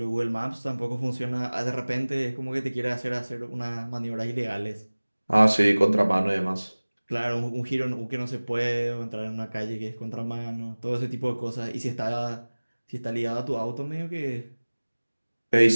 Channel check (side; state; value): both; inverted; correlation -1.00